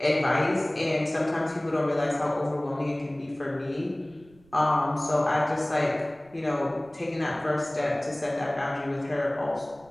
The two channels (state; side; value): noise; right; rumble, 28 dB below the sound